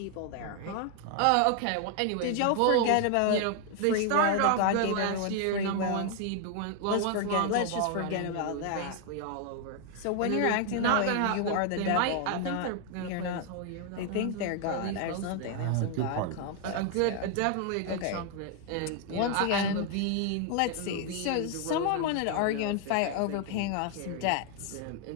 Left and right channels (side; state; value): both; different; correlation 0.00